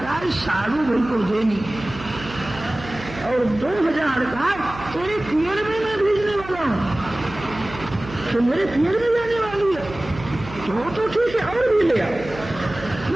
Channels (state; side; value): noise; right; hum, 14 dB below the sound